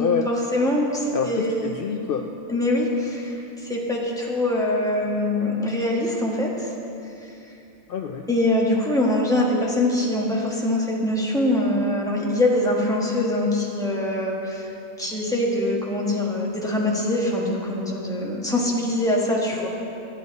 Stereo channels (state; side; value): normal; both; correlation 0.22